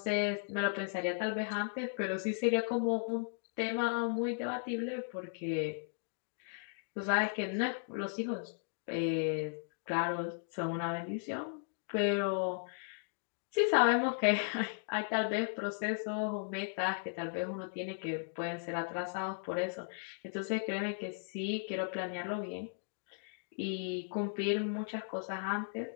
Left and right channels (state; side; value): silent; right; digital silence